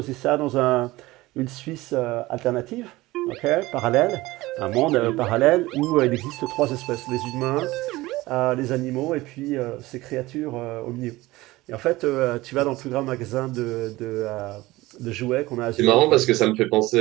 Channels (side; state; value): left; quieter; 19.2 dB